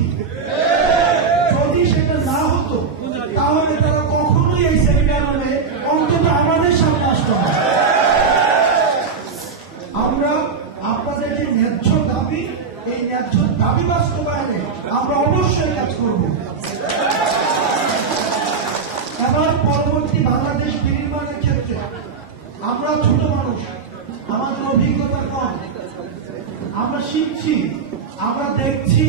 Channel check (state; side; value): quieter; left; 5.4 dB